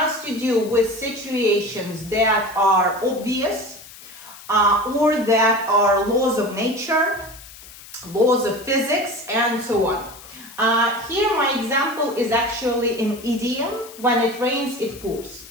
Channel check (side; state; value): left; noise; hiss, 18 dB below the sound